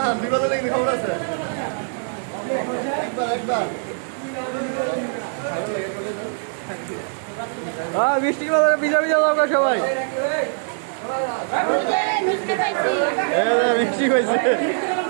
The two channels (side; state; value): left; silent; digital silence